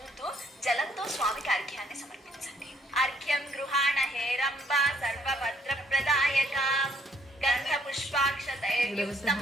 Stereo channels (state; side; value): normal; both; correlation 0.66